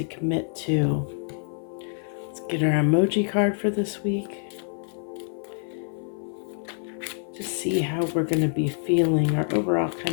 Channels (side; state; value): right; silent; 55 dB below the other